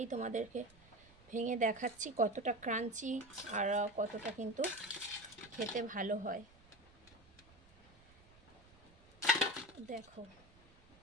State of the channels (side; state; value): right; noise; rumble, 25 dB below the sound